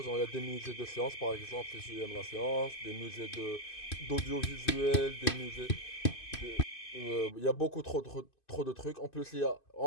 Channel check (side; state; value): right; late; 2.5 ms